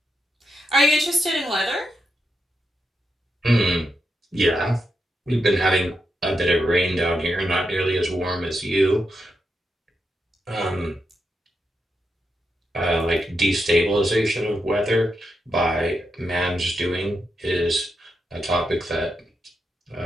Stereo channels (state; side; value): normal; both; correlation 0.85